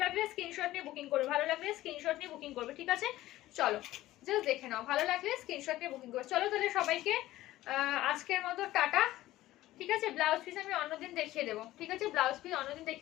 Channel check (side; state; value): right; quieter; 15.9 dB